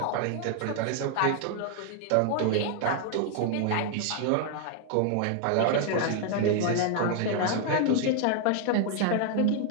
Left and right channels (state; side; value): different; both; correlation 0.00